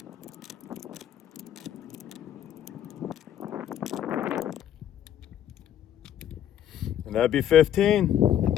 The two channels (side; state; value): right; quieter; 10.6 dB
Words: And that'd be 15.